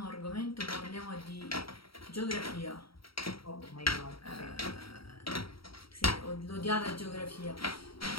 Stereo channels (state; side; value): late; right; 0.75 ms